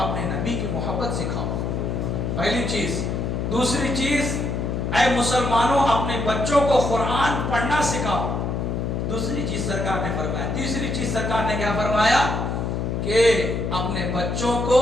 نبی کی محبت سکھاؤ، پہلی چیز. دوسری چیز اے مسلمانوں اپنے بچوں کو قرآن پڑھنا سکھاؤ، دوسری چیز سرکار نے فرمایا. تیسری چیز سرکار نے کیا فرمایا کہ اپنے بچوں کو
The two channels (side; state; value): left; noise; hum, 1 dB below the sound